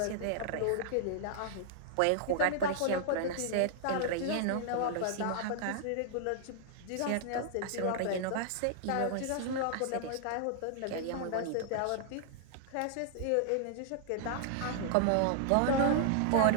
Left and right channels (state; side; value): different; both; correlation -0.01